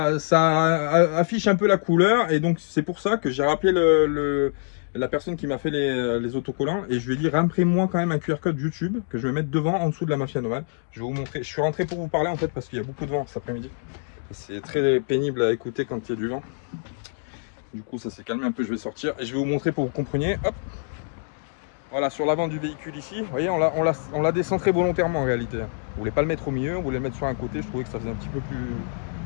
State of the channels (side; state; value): right; silent; digital silence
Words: affiche un peu la couleur, et donc c'est pour ça que j'ai rappelé la personne qui m'a fait les autocollants, et je lui ai dit, imprime-moi quand même un QR code YouTube, que je vais mettre devant, en dessous de la mafia nomade. Je vais vous montrer, je suis rentré pour vous parler en fait, parce qu'il y a beaucoup de vent cet après-midi. C'est très pénible à écouter quand il y a du vent. Du coup ça s'est calmé un peu, je vais sortir, et je vais vous montrer pour que vous compreniez, hop. Voilà, sur l'avant du véhicule ici, vous voyez, on l'a décentré volontairement en réalité. On voulait pas le mettre au milieu, on voulait le mettre sur un côté, je trouvais que ça faisait un petit peu plus,